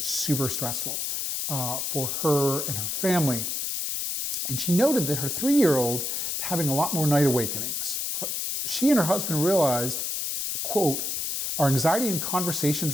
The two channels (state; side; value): noise; left; hiss, 2 dB below the sound